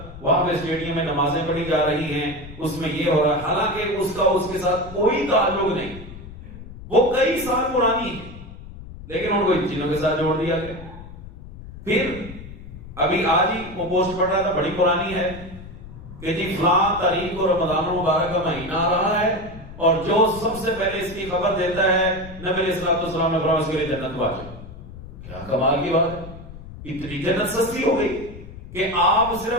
وہاں پہ اسٹیڈیم میں نمازیں پڑھی جا رہی ہیں، اس میں یہ ہو رہا ہے، حالانکہ اس کا اس کے ساتھ کوئی تعلق نہیں، وہ کئی سال پرانی ہے، لیکن ان کو ان چیزوں کے ساتھ جوڑ دیا گیا. پھر ابھی آج ہی وہ پوسٹ پڑھ رہا تھا، بڑی پرانی ہے، کہ جی فلاں تاریخ کو رمضان المبارک کا مہینہ آ رہا ہے اور جو سب سے پہلے اس کی خبر دیتا ہے نبی علیہ الصلوۃ والسلام نے فرمایا اس کے لیے جنت واجب. کیا کمال کی بات ہے، اتنی جنت سستی ہو گئی کہ آپ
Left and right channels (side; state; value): left; noise; rumble, 14 dB below the sound